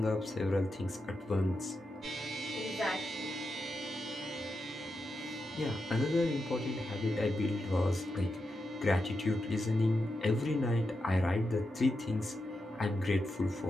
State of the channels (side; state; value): both; normal; correlation 0.87